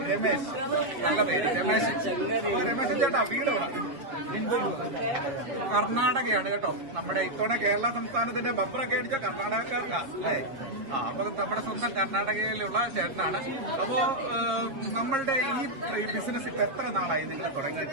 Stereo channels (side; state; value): left; late; 7.4 ms